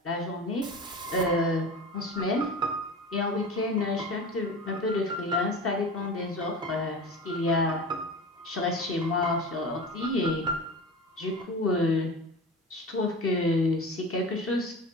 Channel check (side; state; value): both; normal; correlation 0.32